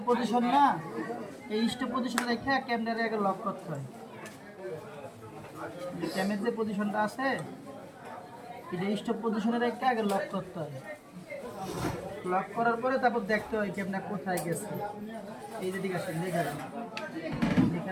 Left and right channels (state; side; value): identical; both; correlation 1.00